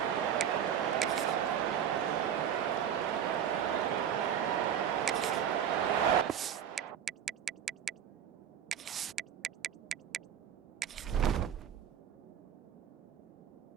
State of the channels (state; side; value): quieter; left; 9.1 dB